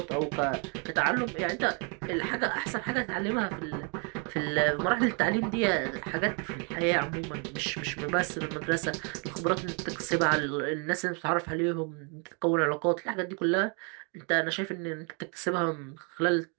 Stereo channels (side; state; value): left; quieter; 36.6 dB